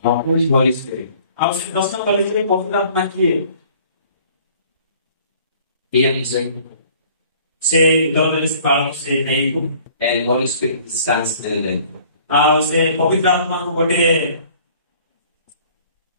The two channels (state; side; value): inverted; both; correlation -0.54